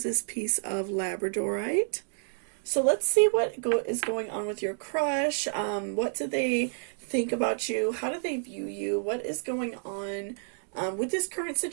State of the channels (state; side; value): silent; left; digital silence